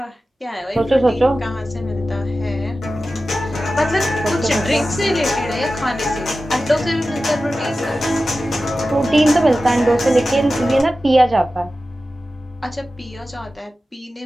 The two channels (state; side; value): normal; both; correlation 0.94